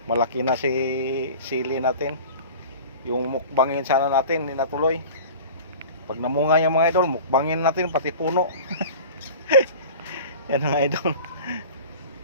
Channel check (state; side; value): inverted; both; correlation -0.38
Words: malaki na si sili natin. Yung mukbangin sana natin, hindi natuloy. Pag namunga yung mga idol, mukbangin natin pati puno. Yan mga idol.